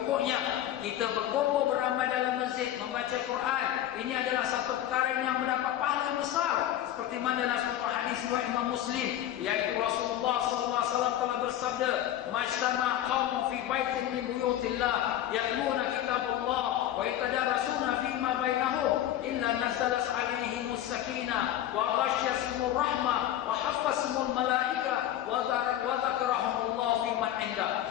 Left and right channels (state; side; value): quieter; right; 12.3 dB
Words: kita berkumpul beramai dalam masjid membaca Quran, ini adalah satu perkara yang mendapat pahala besar. Seperti mana dalam satu hadis riwayat Imam Muslim, yaitu Rasulullah SAW telah bersabda, "Majtama qaumun fi baitin min buyutillah yatluna kitabullah wa yatadarasuna fima bainahum illa nazalat alaihimus sakinah wa ghasyiyatuhumur rahmah wa haffazahumul malaika wa dzakarahumullah fi man inda.